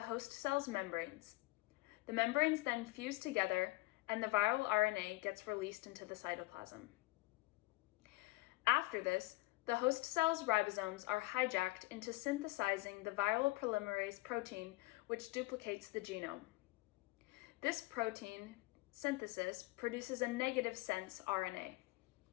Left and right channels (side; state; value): right; quieter; 20.9 dB